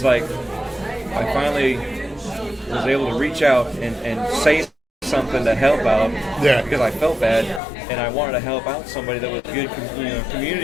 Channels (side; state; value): right; drops out; at 7.6 s